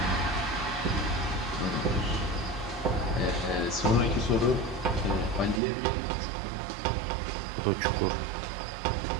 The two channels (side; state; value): left; drops out; at 5.6 s